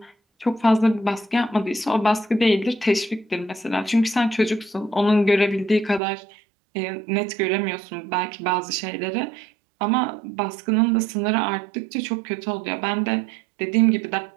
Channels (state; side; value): drops out; left; at 6.0 s